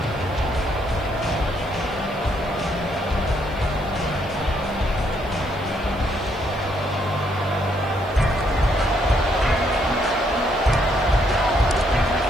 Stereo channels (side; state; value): right; noise; hiss, 28 dB below the sound